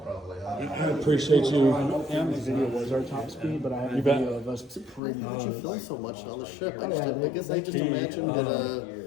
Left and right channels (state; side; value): drops out; right; at 5.0 s